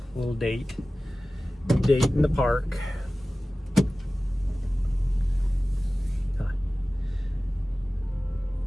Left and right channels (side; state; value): both; normal; correlation 0.97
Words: Little date in the park. Huh.